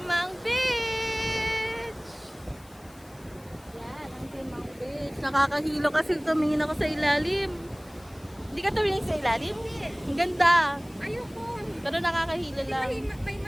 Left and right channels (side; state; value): left; noise; hiss, 26 dB below the sound